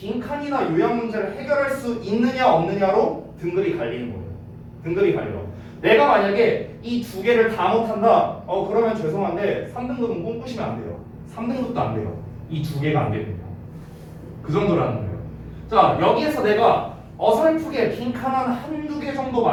요약 문제를 해결할 수 있느냐 없느냐로 등급이 갈리는 거예요. 등급이 갈려. 내가 만약에 이 두 개를 다 못한다. 그러면 죄송한데 3등급은 꿈꾸시면 안 돼요. 3등급도 안 돼요. 이 두 개가 안 됩니다. 그 정도라는 거예요. 자, 여기에서 내가 어설프게 빈칸 한두 개 정도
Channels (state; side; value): identical; both; correlation 1.00